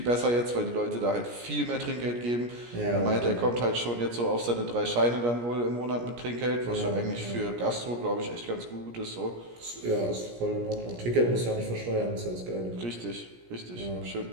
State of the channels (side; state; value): left; late; 17 ms